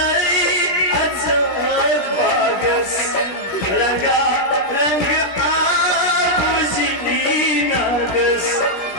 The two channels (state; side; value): late; right; 17 ms